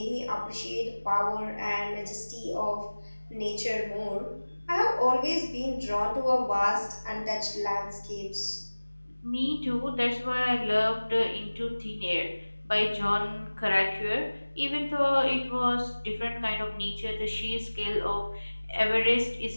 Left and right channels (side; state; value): both; inverted; correlation -1.00